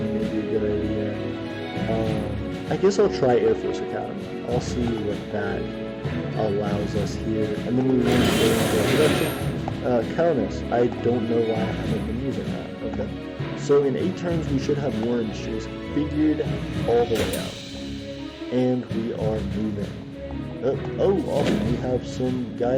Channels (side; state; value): both; identical; correlation 1.00